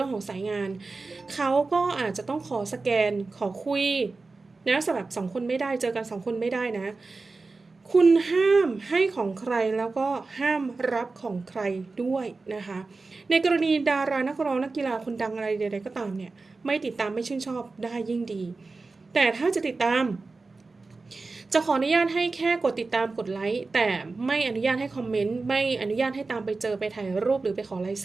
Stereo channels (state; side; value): quieter; left; 3.8 dB